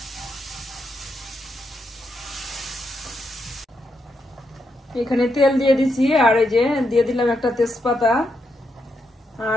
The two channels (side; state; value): both; normal; correlation 0.81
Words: এখানে তেল দিয়ে দিছি, আর এই যে দিয়ে দিলাম একটা তেজপাতা,